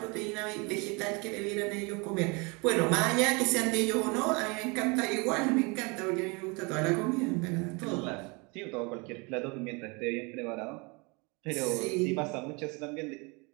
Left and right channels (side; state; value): left; quieter; 29.3 dB